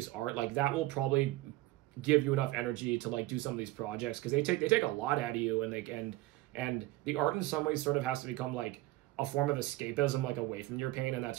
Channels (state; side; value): quieter; left; 17.9 dB